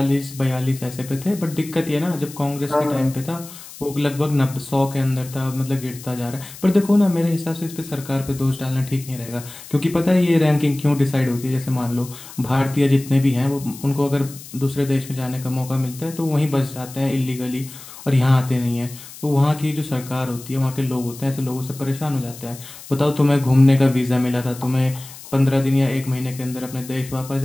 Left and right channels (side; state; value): left; noise; hiss, 16 dB below the sound